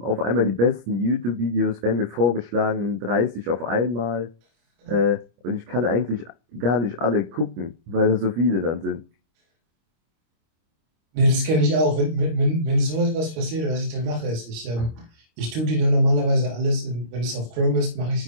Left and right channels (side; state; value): left; late; 25 ms